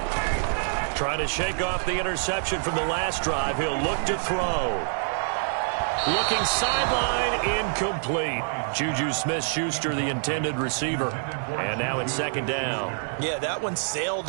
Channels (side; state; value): left; silent; digital silence